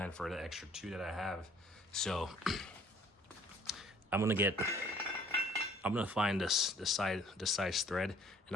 for the extra 2 that I have, so I'm gonna find the size thread, and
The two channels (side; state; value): both; normal; correlation 0.56